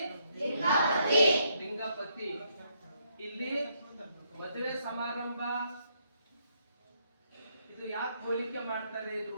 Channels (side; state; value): both; inverted; correlation -0.74